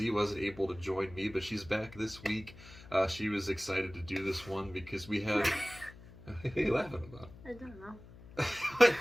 wasn't able to join me, but she's back this week. She was excited to do this one because we have... What are you laughing about? I don't know.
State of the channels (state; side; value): noise; left; hum, 19 dB below the sound